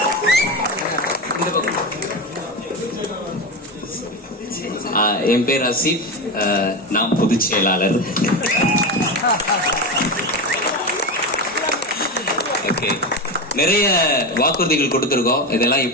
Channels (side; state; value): both; normal; correlation 0.18